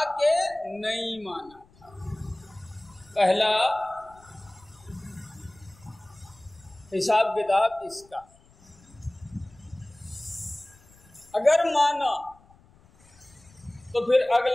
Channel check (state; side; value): noise; left; rumble, 27 dB below the sound